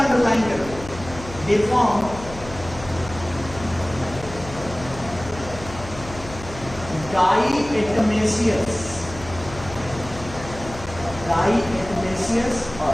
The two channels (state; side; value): noise; left; hum, 14 dB below the sound